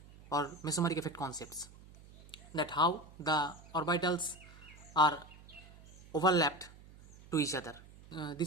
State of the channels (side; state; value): right; noise; hum, 21 dB below the sound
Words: or mesomeric effect concepts, that how the orbitals are overlapped to each other.